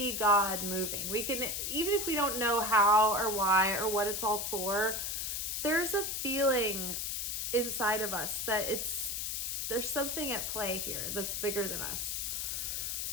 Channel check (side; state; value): left; noise; hiss, 2 dB below the sound